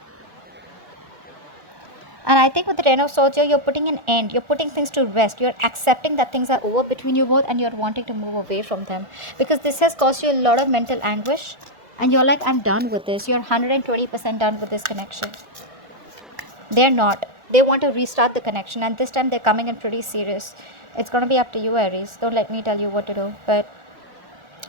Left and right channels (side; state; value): left; late; 1.4 ms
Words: And I think with the Ten of Swords here, you're putting an end. You're putting things to rest. You're accepting that things are over between you both and you're wanting to move away from them. Because this has caused you a lot of mental anguish. And you're like, I'm done with this. You're 120% done with this connection. They're not. They want to restart the connection. And this time they're coming in pretty serious. It's going to be up to you, Aries. Don't let me tell you what to do. But